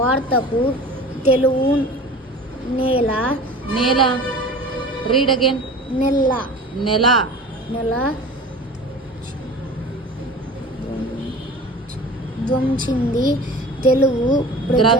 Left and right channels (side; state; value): both; normal; correlation 0.39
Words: తెలుగు నేల. Read again. నెల ధ్వంసింది తెలుగు.